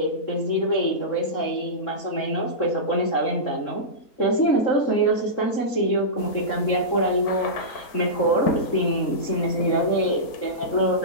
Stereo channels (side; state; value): right; late; 3.7 ms